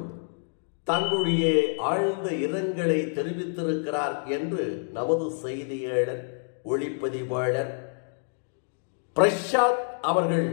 தங்களுடைய ஆழ்ந்த இரங்கலை தெரிவித்திருக்கிறார் என்று நமது செய்தியாளர், ஒளிப்பதிவாளர் பிரசாத் அவர்கள்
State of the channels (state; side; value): silent; right; 60 dB below the other